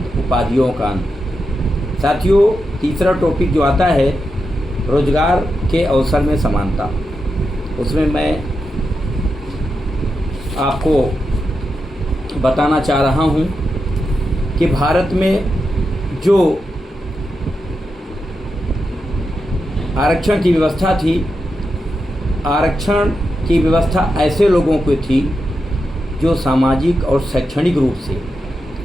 उपाधियों का अंत। साथियों, तीसरा टॉपिक जो आता है रोजगार के अवसर में समानता, उसमें मैं आपको बताना चाह रहा हूं कि भारत में जो आरक्षण की व्यवस्था थी, आरक्षण की व्यवस्था ऐसे लोगों को थी जो सामाजिक और शैक्षणिक रूप से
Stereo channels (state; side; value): normal; both; correlation 0.87